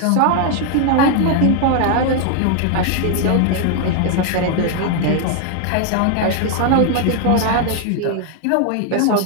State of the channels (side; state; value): both; different; correlation 0.00